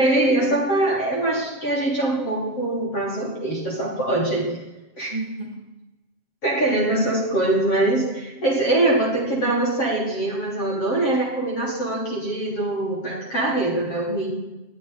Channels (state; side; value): late; right; 7.5 ms